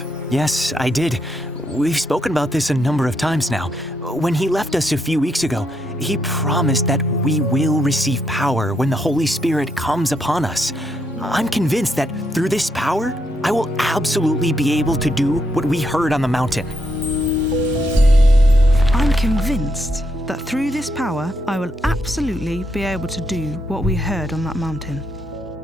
Yes, I did. We've spoken about this a number of times now. When he left us a few weeks ago, he promised that we will receive power when the Holy Spirit comes upon us. I'm convinced that through this power, I will absolutely be able to do what we heard on the mountain. I'm convinced that through this power, I will absolutely be able to do what we heard on that mountain.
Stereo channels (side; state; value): both; normal; correlation 0.78